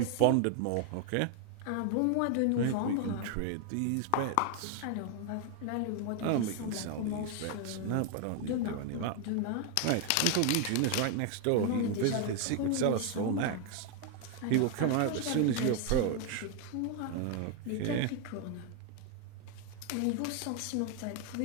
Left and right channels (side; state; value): both; different; correlation 0.00